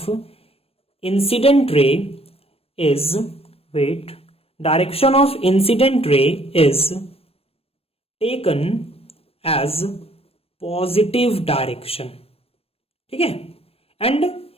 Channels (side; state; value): right; late; 0.28 ms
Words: incident ray is, wait, direction of incident ray is taken as positive direction. ठीक है। एंड